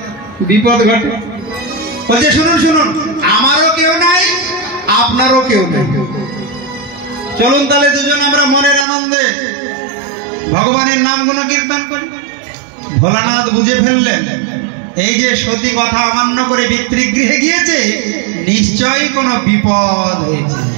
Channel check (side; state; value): left; drops out; at 8.8 s